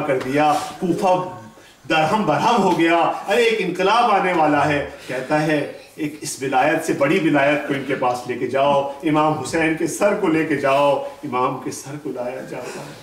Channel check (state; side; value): identical; both; correlation 1.00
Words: کر دیا، کوفہ درہم برہم ہو گیا، ارے ایک انقلاب آنے والا ہے۔ کہتا ہے ایک اس ولایت سے بڑی ولایت کو ان کے پاس لے کے جاؤ، امام حسین کے سر کو لے کے جاؤ۔ امام کے سر کو لایا جاتا